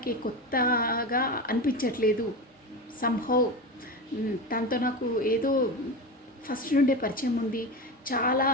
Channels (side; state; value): both; normal; correlation 0.23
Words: కొత్తగా అనిపించట్లేదు. సంహౌ తనతో నాకు ఏదో ఫస్ట్ నుండే పరిచయం ఉంది. చాలా